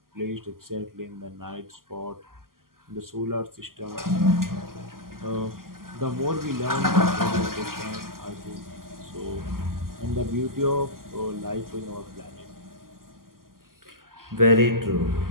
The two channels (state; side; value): late; left; 0.92 ms